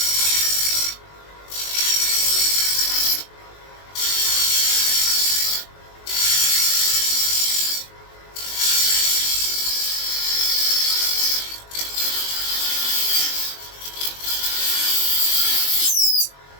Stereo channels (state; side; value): late; right; 21 ms